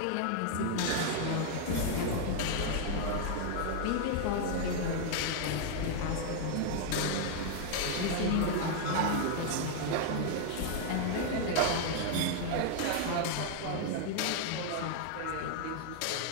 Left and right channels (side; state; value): both; different; correlation 0.00